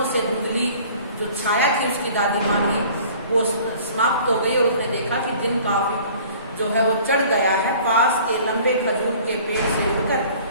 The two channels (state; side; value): inverted; both; correlation -0.49